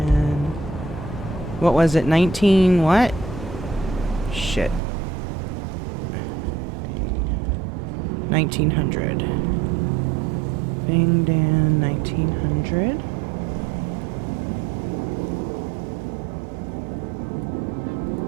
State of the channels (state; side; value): drops out; left; at 4.8 s